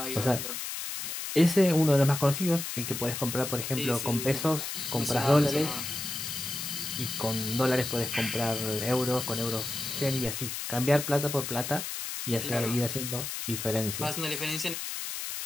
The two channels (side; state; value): left; noise; hiss, 5 dB below the sound